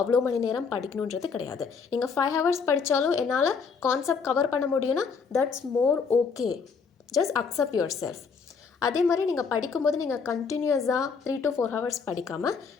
அவ்வளோ மணி நேரம் படிக்கணுன்றது கிடையாது. நீங்கள் 5 hours படித்தாலும் என்னால் கான்செப்ட் கவர் பண்ண முடியும்னா that's more okay. Just accept your self. அதே மாதிரி நீங்கள் படிக்கும்போது நீங்கள் கண்டினியூஸாக 3 to 4 hours படிக்காமல்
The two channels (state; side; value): quieter; right; 5.5 dB